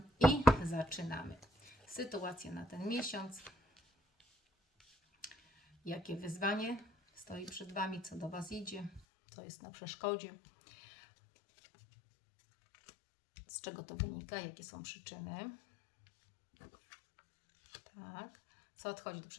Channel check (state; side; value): drops out; right; at 9.0 s